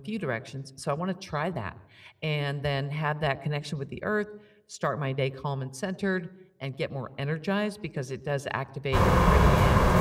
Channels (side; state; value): both; identical; correlation 1.00